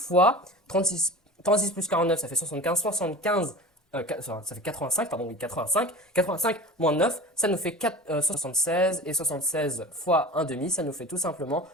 36 plus 49, ça fait 75, 75. Ça fait 85, pardon, oui, 85. 85 moins 9, ça nous fait 76. Et 76 fois 1 demi, ça nous fait tout simplement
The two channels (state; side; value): normal; both; correlation 0.35